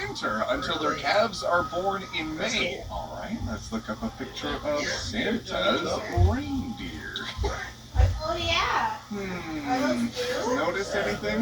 until their calves are born in May. All right, let's look up a picture of Santa's reindeer. Oh, yeah. Notice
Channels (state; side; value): identical; both; correlation 1.00